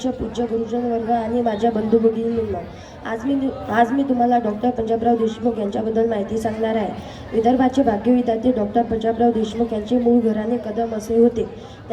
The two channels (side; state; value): both; identical; correlation 1.00